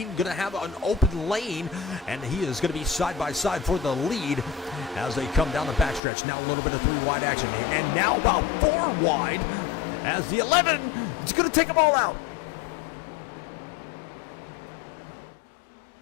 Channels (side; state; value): right; drops out; at 6.0 s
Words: going to have an open lane, and he is going to be side by side for the lead as they come down the backstretch. Now a little bit of 3 wide action, and now about 4 wide as the 11 is going to take them all out.